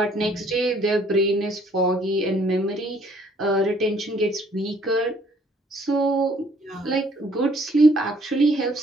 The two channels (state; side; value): normal; both; correlation 0.62